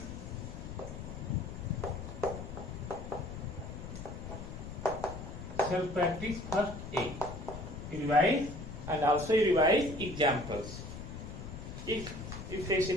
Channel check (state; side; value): noise; left; rumble, 9 dB below the sound